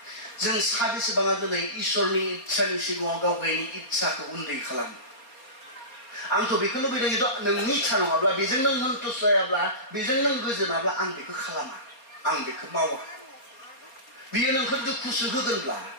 जों साबेसेबाङा दिनै इसोरनि इच्छानि सिगाङाव गाव गावनि इच्छाखौ उन्दै खालामो आंथ' बेखौ लुबैदों खिन्थु नोंनि इच्छा नङाब्ला बेजों नों सन्तुष्ट जायाब्ला बेजों नों गोजोनाब्ला आं बेखौ खालामा आं बेखौ मावा बियो नोंखौ दुखुसो होगोनब्ला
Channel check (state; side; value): late; right; 4.3 ms